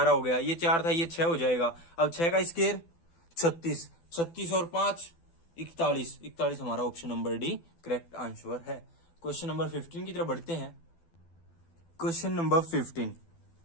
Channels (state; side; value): late; right; 12 ms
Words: हो गया, ये 4 था ये 6 हो जाएगा। अब 6 का स्क्वायर 36, 36 और 5 41, 41 हमारा option number D correct answer है। क्वेश्चन नंबर 15 की तरफ बढ़ते हैं। Question number 15,